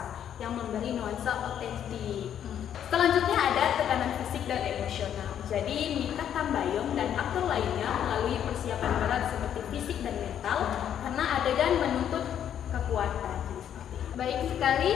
yang memberi nuansa otentik. Selanjutnya ada tekanan fisik dan emosional. Jadi, Mikha Tambayong dan aktor lainnya melalui persiapan berat seperti fisik dan mental karena adegan menuntut kekuatan. Baik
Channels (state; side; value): quieter; right; 9.6 dB